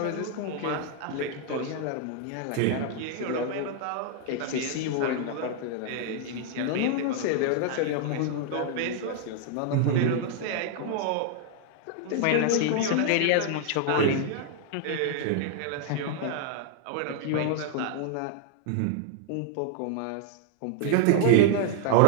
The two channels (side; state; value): both; different; correlation 0.00